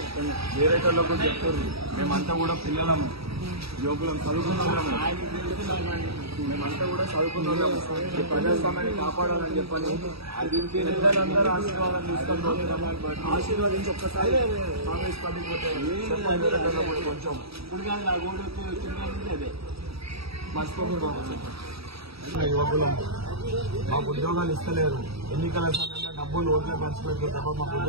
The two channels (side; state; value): left; late; 0.77 ms